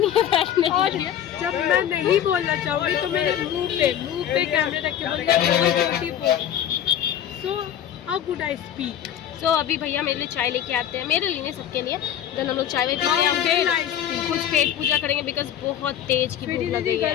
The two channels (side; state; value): right; quieter; 10.3 dB